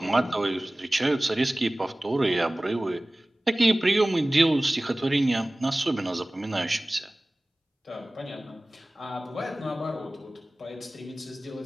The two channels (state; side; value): normal; both; correlation 0.98